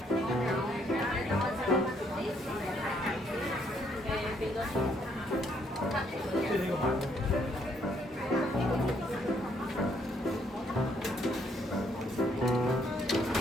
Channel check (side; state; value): both; normal; correlation 0.70